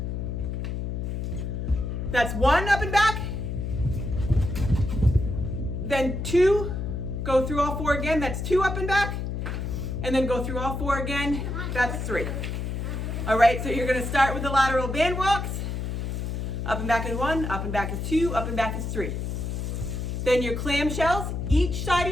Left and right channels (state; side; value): noise; left; hum, 3 dB below the sound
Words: That's one up and back, then two, go through all four again, that's two up and back, and then go through all four again, that's three. All right, so you're gonna start with the lateral band walks. Up and back is one, up and back is two, up and back is three. Then your clamshells, each side